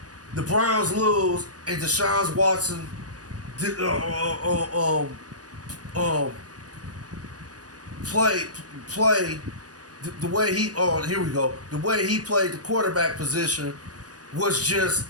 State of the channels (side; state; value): left; late; 0.68 ms